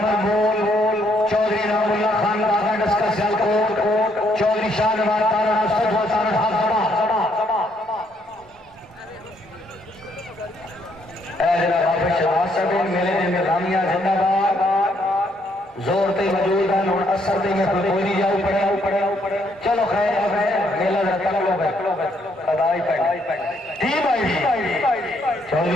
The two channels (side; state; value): both; normal; correlation 0.71